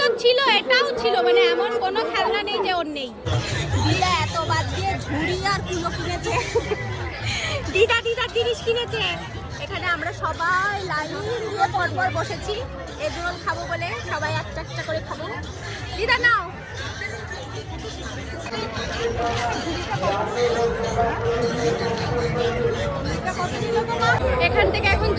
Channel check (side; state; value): both; identical; correlation 1.00